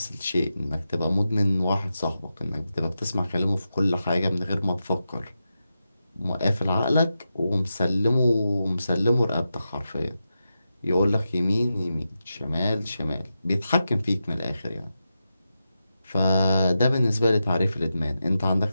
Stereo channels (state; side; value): inverted; both; correlation -0.89